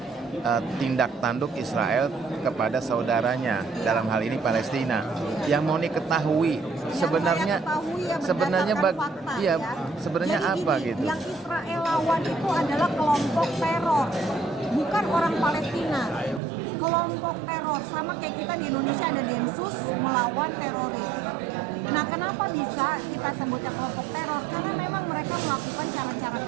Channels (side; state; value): left; drops out; at 16.4 s